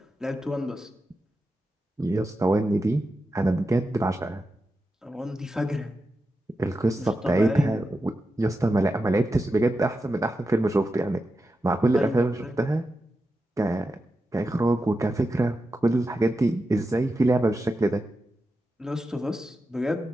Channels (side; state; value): both; normal; correlation 0.89